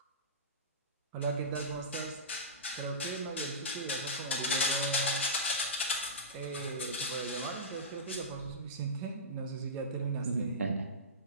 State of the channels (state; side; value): normal; both; correlation -0.19